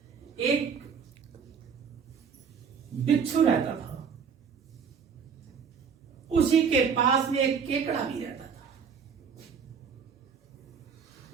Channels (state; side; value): quieter; left; 6.5 dB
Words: एक बिच्छू रहता था, उसी के पास में एक केकड़ा भी रहता था।